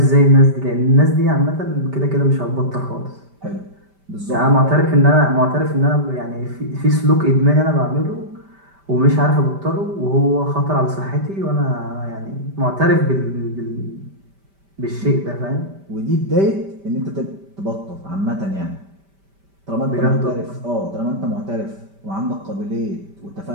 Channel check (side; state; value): left; late; 5.1 ms